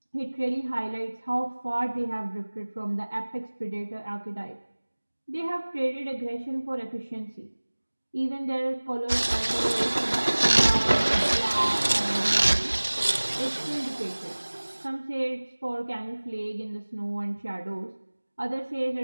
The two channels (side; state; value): both; inverted; correlation -1.00